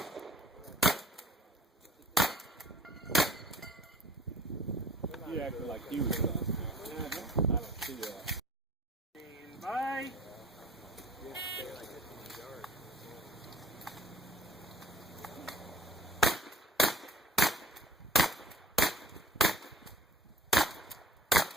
You acting like you was done. I don't see that. Bye.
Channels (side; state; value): both; normal; correlation 0.48